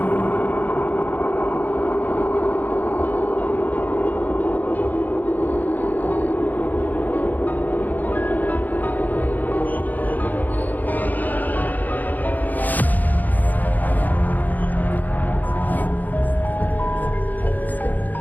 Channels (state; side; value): late; right; 0.083 ms